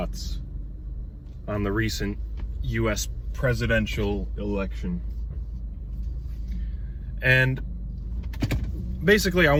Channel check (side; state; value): both; identical; correlation 1.00